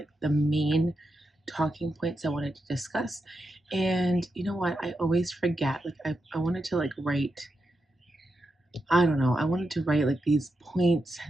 the main talking points I wanted to discuss. And you know what? I always forget. Like I wanted to like write, I don't know, I wanted to write like these points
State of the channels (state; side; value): normal; both; correlation 0.86